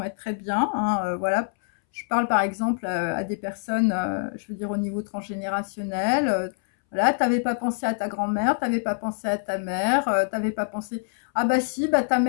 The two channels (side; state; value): right; silent; 62 dB below the other